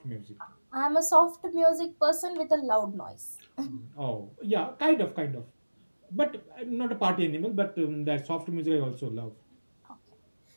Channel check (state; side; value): inverted; both; correlation -1.00